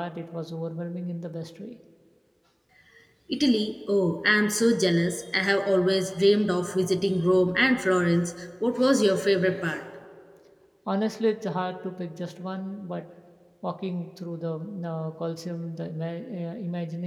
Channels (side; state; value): both; identical; correlation 1.00